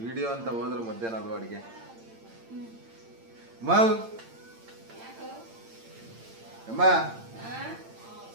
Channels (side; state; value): left; late; 8.8 ms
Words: ವಿಡಿಯೋ ಅಂತ ಹೋದ್ರೆ ಮಧ್ಯಾಹ್ನ ಅದು ಅಡಿಗೆ ಅಮ್ಮ